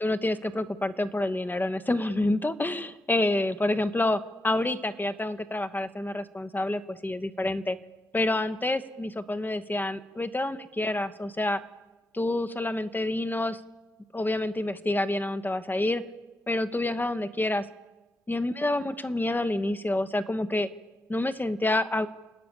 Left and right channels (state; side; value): normal; both; correlation 0.84